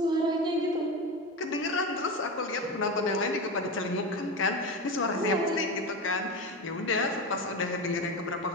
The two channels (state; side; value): normal; both; correlation 0.21